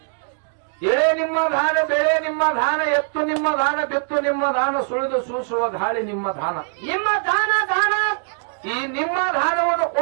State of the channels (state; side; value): silent; left; digital silence